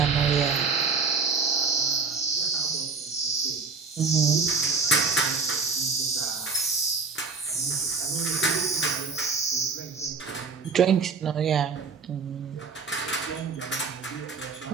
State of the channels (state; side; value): quieter; left; 4.9 dB